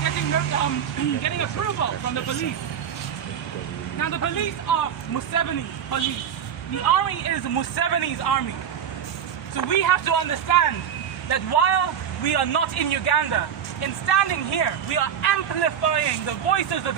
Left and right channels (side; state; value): left; quieter; 8.6 dB